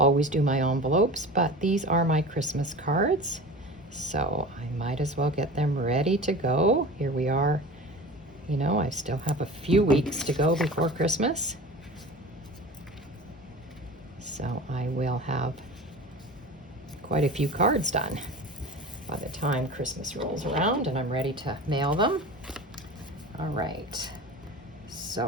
do my envelopes, but these are my Christmas cards, so I might as well get them ready to go. Here we are. You know, I still have a few weeks to go before Christmas, so I will have quite a few cards done by the time Christmas rolls around and I'm ready to mail them. All right,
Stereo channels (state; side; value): normal; both; correlation 0.35